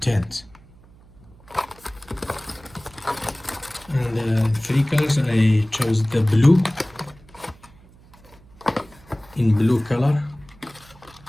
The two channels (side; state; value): right; noise; hum, 25 dB below the sound